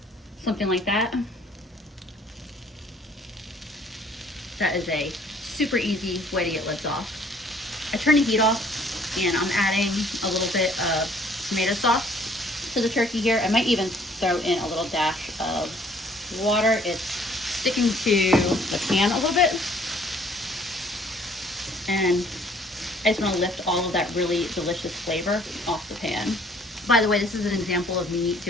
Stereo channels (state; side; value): normal; both; correlation 0.58